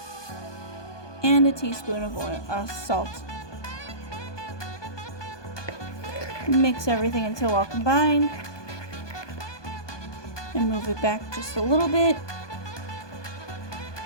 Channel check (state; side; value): late; right; 1.2 ms